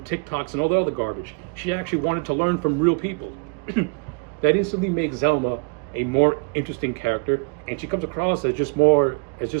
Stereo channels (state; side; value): quieter; left; 34.3 dB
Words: TikToks and all the other garbage. She actually wanted to learn from real people. That instantly makes Zelma a more interesting character, and she comes across as just more